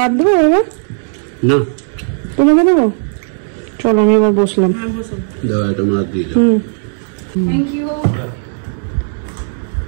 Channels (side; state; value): left; silent; 70 dB below the other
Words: দেবো বাবা? না তোমাকে দেবো? চলো আমি এবার বসলাম।